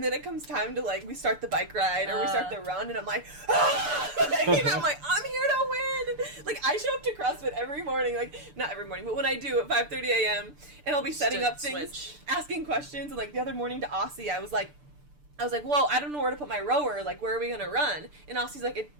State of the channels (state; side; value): late; left; 6.8 ms